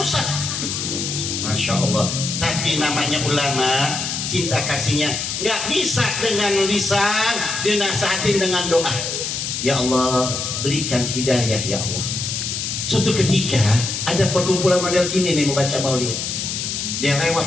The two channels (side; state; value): left; noise; hiss, 3 dB below the sound